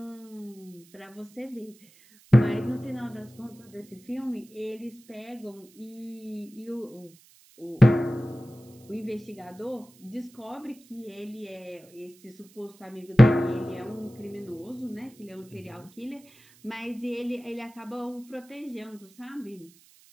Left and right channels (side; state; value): right; noise; hiss, 26 dB below the sound